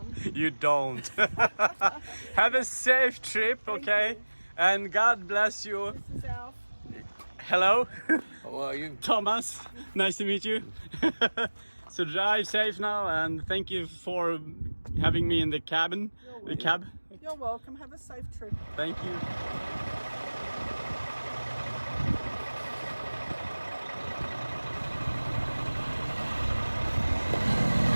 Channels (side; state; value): both; inverted; correlation -1.00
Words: You don't. Have a safe trip, okay? you. And God bless you. This is Alf. Hello, How are you? Thomas. Nice to meet you. So drive safe now, and thank you for having me in the cabin. The cab. You're welcome. Have a safe trip. Thank you.